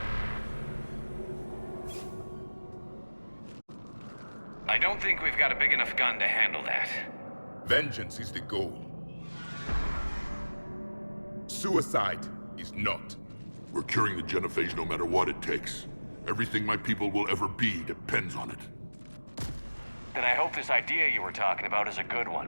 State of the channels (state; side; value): inverted; both; correlation -1.00